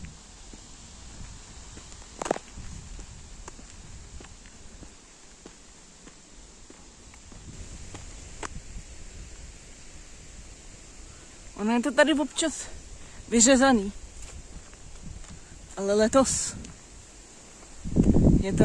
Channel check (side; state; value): both; identical; correlation 1.00